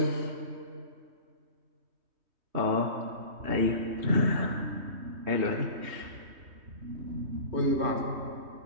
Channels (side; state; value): left; late; 3.2 ms